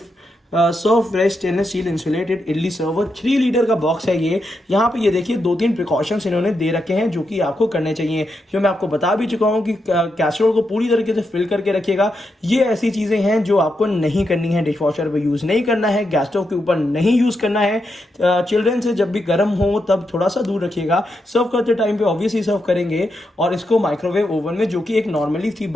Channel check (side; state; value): both; normal; correlation 0.84